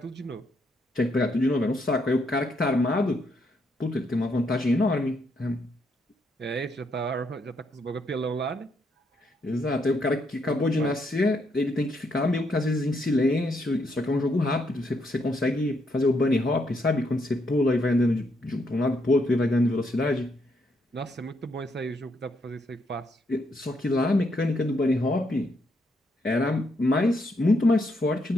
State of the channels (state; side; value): normal; both; correlation 0.76